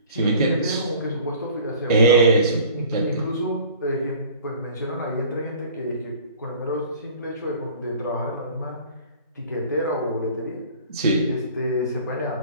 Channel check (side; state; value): both; inverted; correlation -0.47